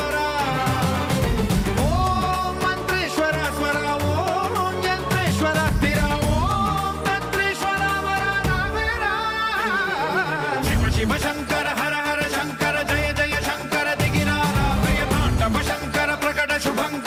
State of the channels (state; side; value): identical; both; correlation 1.00